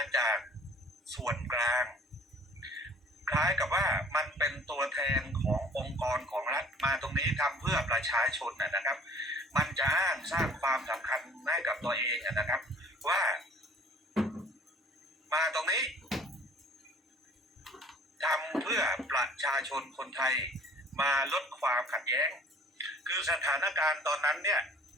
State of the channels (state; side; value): normal; both; correlation 0.53